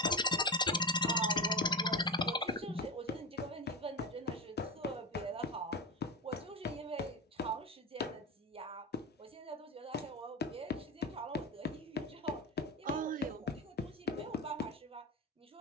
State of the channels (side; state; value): both; normal; correlation 0.21